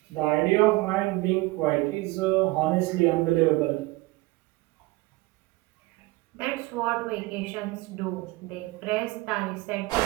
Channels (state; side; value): quieter; left; 21.2 dB